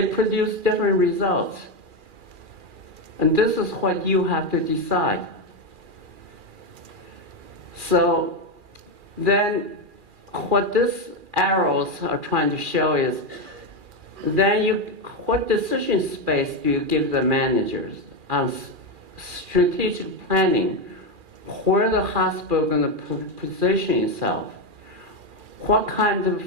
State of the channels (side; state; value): left; late; 2.4 ms